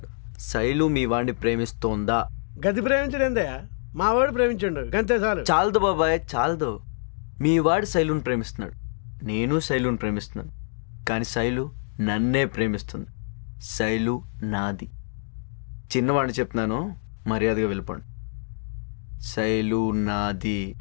శైలు మీ వాడిని ప్రేమిస్తోందా? గది ప్రేమించడేందయ్యా, మా వాడు ప్రేమించండు గంతే చాలు. చాలదు బాబాయ్, చాలదు. మీ వాడి శైలుని ప్రేమిస్తున్నాడు, నేను శైలుని ప్రేమిస్తున్నాను. కానీ శైలు నన్నే ప్రేమిస్తుంది. శైలు నాది. చిన్నవాడిని చెప్తున్నాను, మర్యాదగా వెళ్ళిపోండి. శైలు నాది.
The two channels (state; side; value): silent; right; digital silence